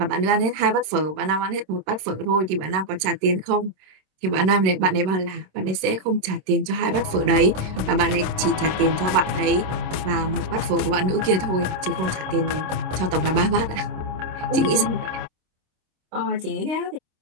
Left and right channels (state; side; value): late; left; 26 ms